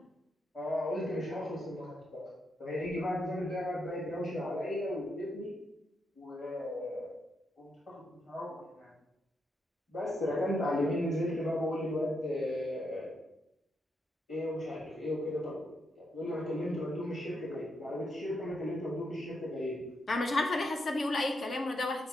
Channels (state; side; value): normal; both; correlation 0.81